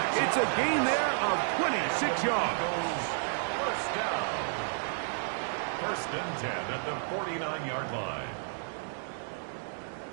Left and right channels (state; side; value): silent; left; digital silence